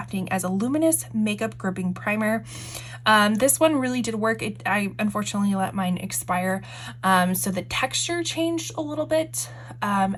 as a luminous makeup gripping primer. This one really did work. I unfortunately let mine expire, so the texture changed a little bit,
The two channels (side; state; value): both; identical; correlation 1.00